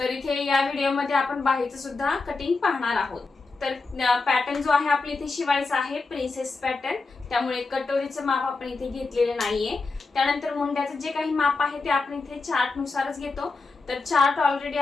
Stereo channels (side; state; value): right; quieter; 3.9 dB